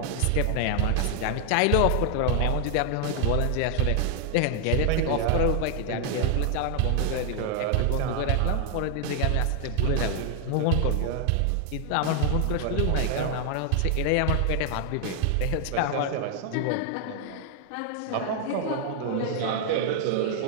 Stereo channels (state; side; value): different; both; correlation 0.00